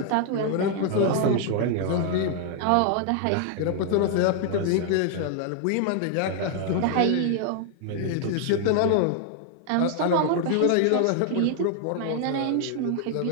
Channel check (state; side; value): different; both; correlation 0.00